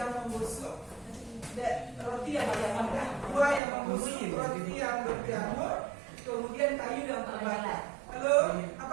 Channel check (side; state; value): left; drops out; at 3.6 s